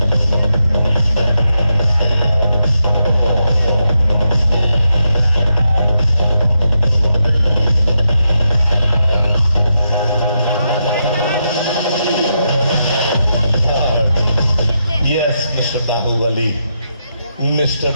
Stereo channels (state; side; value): inverted; both; correlation -0.84